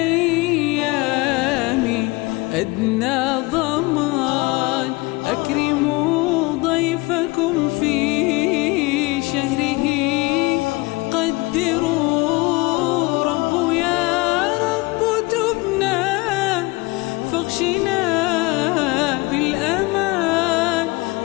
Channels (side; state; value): right; quieter; 23.7 dB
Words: أدنى ضمان، أكرموا ضيفكم في شهره، قدروا رب يا رب تبنا، فاغشنا بالأمان،